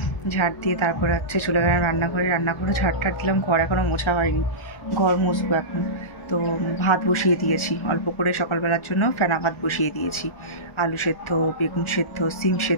ঝাড় দিয়ে তারপরে হচ্ছে চলে গেলাম রান্নাঘরে ঝাড় দিলাম। ঘর এখনও মোছা হয়নি, ঘর মুছবো এখন। তো ভাত বসিয়ে দিয়েছি অল্প করে, সকালবেলার জন্য ফেনা ভাত বসিয়ে দিয়েছি। আলু সেদ্ধ, বেগুন সেদ্ধ, সিম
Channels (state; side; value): late; right; 1.3 ms